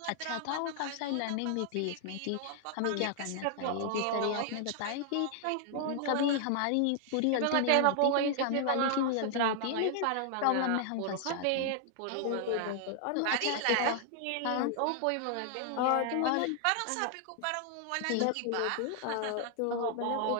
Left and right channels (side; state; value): both; different; correlation 0.00